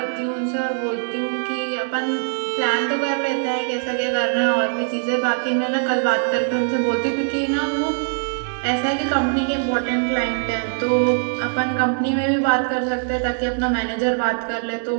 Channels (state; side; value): silent; left; digital silence